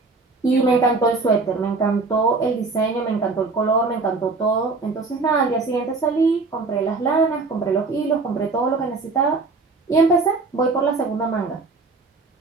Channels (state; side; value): quieter; left; 3.9 dB